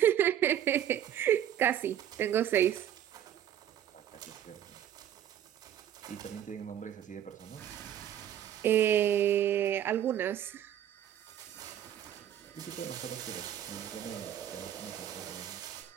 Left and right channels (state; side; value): quieter; left; 10.6 dB